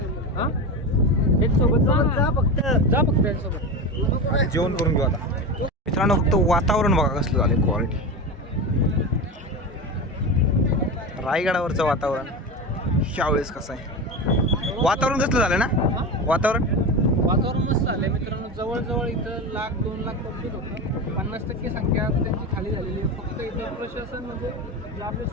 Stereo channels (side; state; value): both; normal; correlation 0.22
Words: हां एक सोबत जा फक्त याच्यासोबत जेवण करून घेऊ. आता मित्रांनो फक्त वातावरण बघा कसलं झालं, क्वालिटी. रायगडावरचं वातावरण ह्यावेळेस कसं आहे, वातावरण कसलं झालं ना, वातावरण मस्त झालं मित्रांनो. जवळजवळ इथं 1,00,000-2 लाख पब्लिक होतं. 50% संख्या त्यांची खाली झालेली आहे. फक्त इथं प्रशासन म्हणजे जे आपले